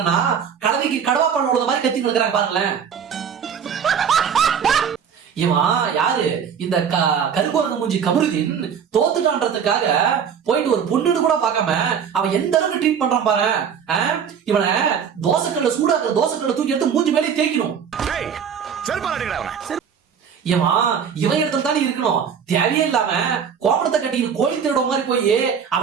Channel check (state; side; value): quieter; left; 7.4 dB